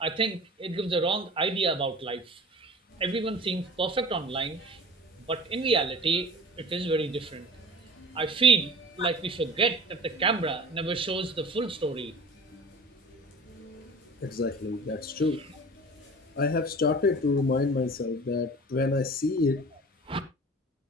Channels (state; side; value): normal; both; correlation 0.39